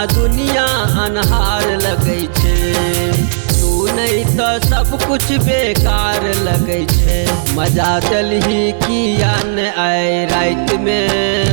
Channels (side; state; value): left; silent; digital silence